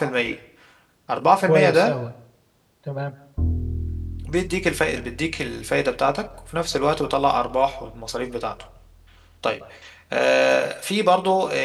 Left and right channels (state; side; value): identical; both; correlation 1.00